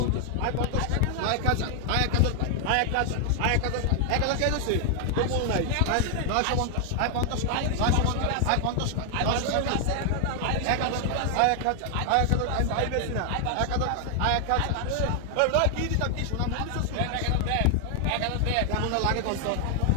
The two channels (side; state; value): both; different; correlation 0.00